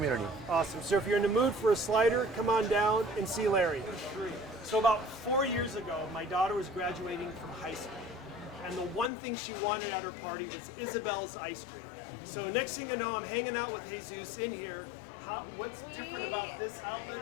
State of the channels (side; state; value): right; drops out; at 9.1 s